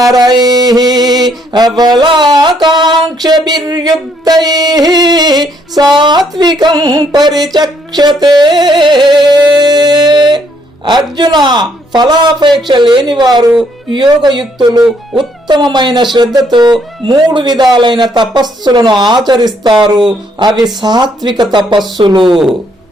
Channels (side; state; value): both; normal; correlation 0.69